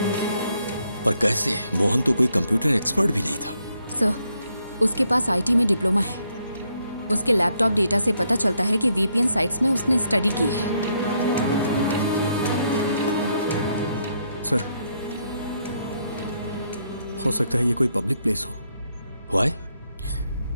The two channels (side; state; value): both; inverted; correlation -0.75